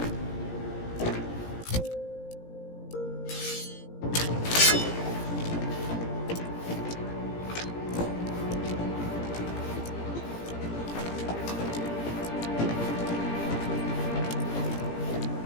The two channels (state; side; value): late; right; 17 ms